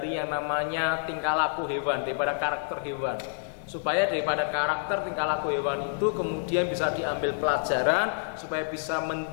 yang namanya tingkah laku hewan, daripada karakter hewan, supaya daripada karakter tingkah laku hewan itu kemudian bisa diambil pelajaran, supaya bisa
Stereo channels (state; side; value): silent; right; digital silence